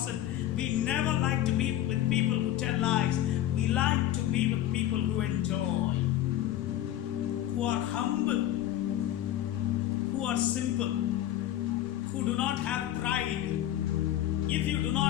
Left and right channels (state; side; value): quieter; right; 12.7 dB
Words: We never like to be with people who tell lies. We like to be with people who enjoy, who are humble, who are simple, who do not have pride. If you do